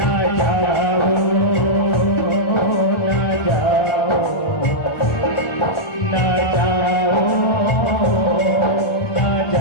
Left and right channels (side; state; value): right; late; 1.4 ms